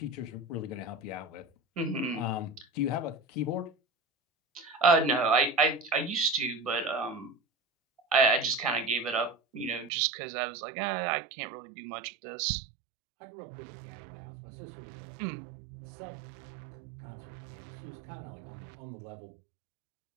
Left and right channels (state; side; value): drops out; left; at 9.9 s